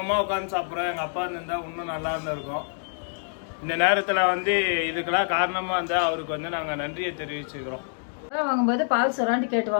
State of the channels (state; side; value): silent; right; 61 dB below the other